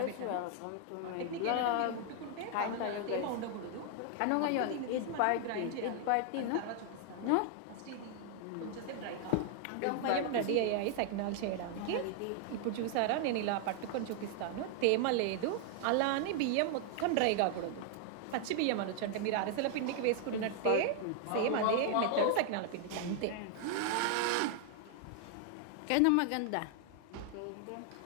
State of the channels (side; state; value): both; different; correlation 0.00